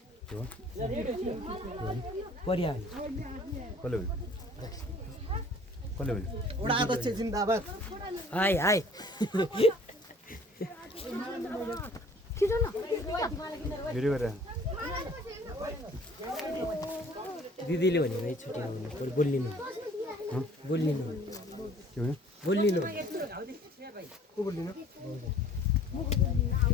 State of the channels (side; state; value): both; normal; correlation 0.52